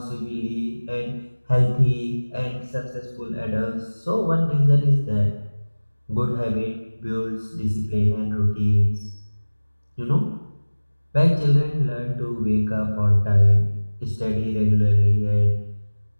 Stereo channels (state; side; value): inverted; both; correlation -1.00